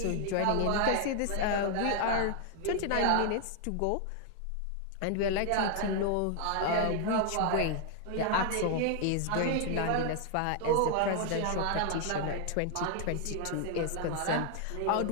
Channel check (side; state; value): both; different; correlation 0.00